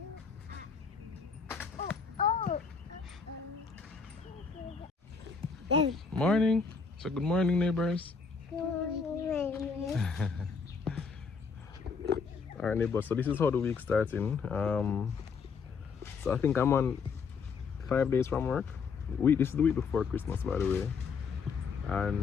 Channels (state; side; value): quieter; right; 5.4 dB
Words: Oh, uh-oh. Morning. So good morning, neighbors. Alright, neighbors. So this is how the week starting. So I think I'm on 5 days from work. This is the week before Christmas, by the way.